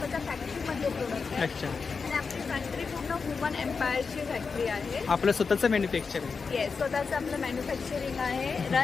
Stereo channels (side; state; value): right; quieter; 5.1 dB